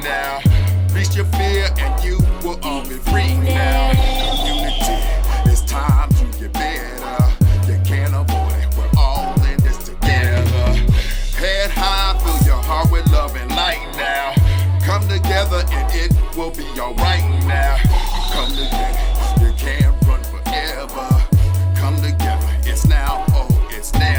now. Reach your fear and you will all be free now. Community, it's time to get better. You can't avoid it, we're all in this together. Head high, fill your heart with love and light now. Come together and it will be alright now. Come together, you can't run forever. Come together, it's now, oh, it's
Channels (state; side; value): identical; both; correlation 1.00